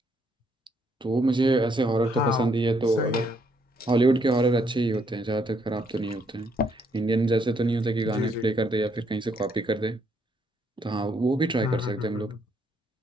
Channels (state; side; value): normal; both; correlation 0.72